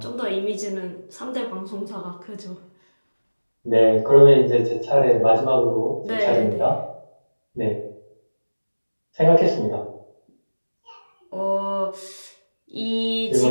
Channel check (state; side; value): inverted; both; correlation -1.00